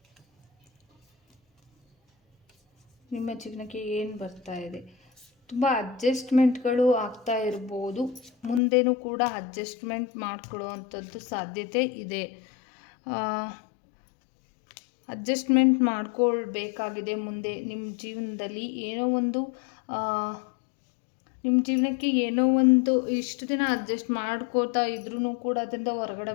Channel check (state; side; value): drops out; right; at 8.6 s